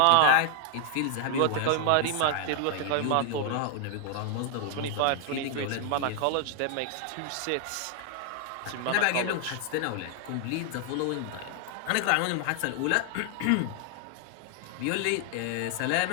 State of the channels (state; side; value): different; both; correlation 0.00